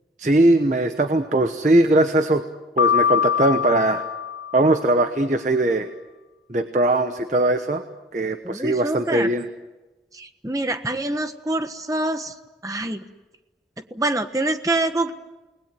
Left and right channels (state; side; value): normal; both; correlation 0.43